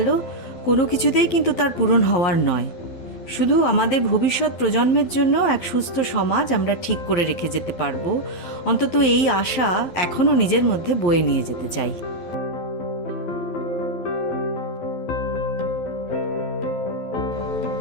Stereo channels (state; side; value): late; right; 12 ms